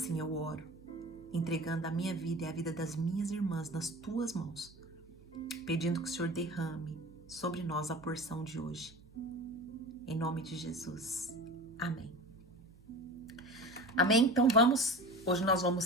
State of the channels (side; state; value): right; noise; hum, 24 dB below the sound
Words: eu oro, entregando a minha vida e a vida das minhas irmãs nas tuas mãos, pedindo que o Senhor derrame sobre nós a porção de hoje. Em nome de Jesus. Amém. Amém? Então hoje nós